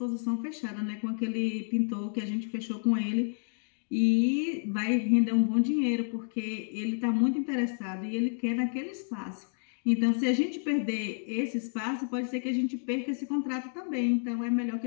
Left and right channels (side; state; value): right; silent; 58 dB below the other